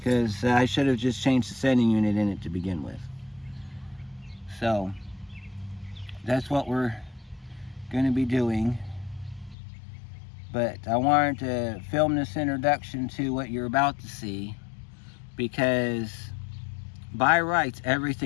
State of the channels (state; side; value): drops out; right; at 9.6 s